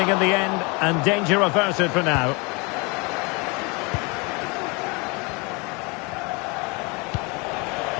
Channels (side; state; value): right; quieter; 29.1 dB